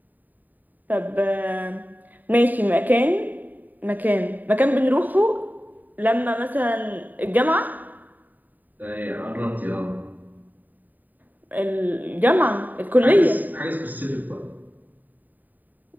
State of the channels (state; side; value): late; left; 0.086 ms